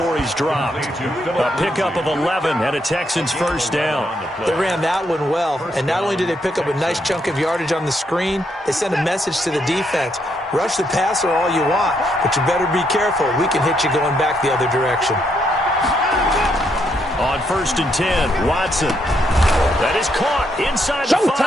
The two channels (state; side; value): normal; both; correlation 0.76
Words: he's dropped. A pickup of 11 and a Texans first down. They ran that one well, and not only did they pick up a nice chunk of yardage on the screen, they sent a message to the defense. Rush the passer all you want, but you better be careful. We can hit you going back the other direction. On 1st and 10, Watson. That is caught inside the